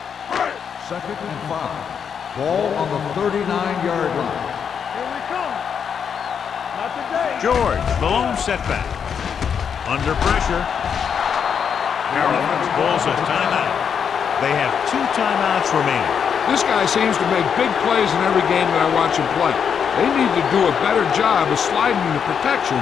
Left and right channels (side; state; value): right; quieter; 7.2 dB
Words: 2nd and 5. Ball on the 39-yard line. Here we come. Not today. George, the lone setback. Under pressure. Carolina calls a timeout. They have 2 timeouts remaining. This guy seems to make big plays in every game that I watch him play. They need to do a better job of sliding the protection